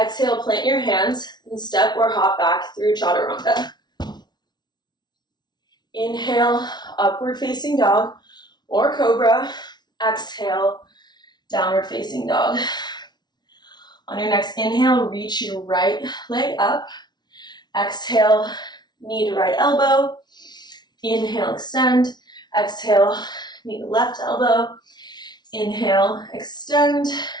plant your hands and step or hop back through chaturanga. Inhale, upward facing dog or cobra. Exhale, downward facing dog. On your next inhale, reach your right leg up. Exhale, knee to right elbow. Inhale, extend. Exhale, knee to left elbow. Inhale, extend.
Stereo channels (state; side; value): late; right; 0.20 ms